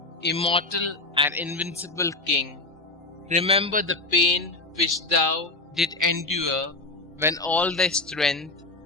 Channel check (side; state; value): right; quieter; 3.1 dB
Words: immortal and invincible King, remember the pain which thou didst endure when all thy strength,